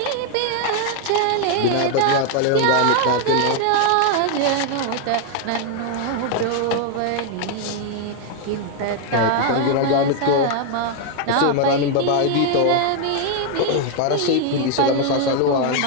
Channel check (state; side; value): different; both; correlation 0.00